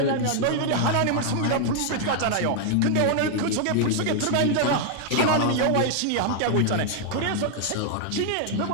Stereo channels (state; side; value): different; both; correlation 0.00